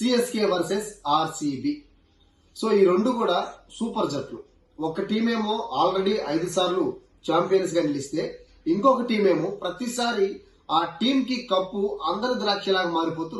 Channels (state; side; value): identical; both; correlation 1.00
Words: వర్సెస్ ఆర్సీబీ. సో ఈ రెండు కూడా సూపర్ జట్లు. ఒక టీమేమో ఆల్రెడీ 5 సార్లు ఛాంపియన్స్ గా నిలిస్తే, ఇంకొక టీమేమో ప్రతిసారి ఆ టీం కి కప్పు అందరి ద్రాక్షలాగా మారిపోతూ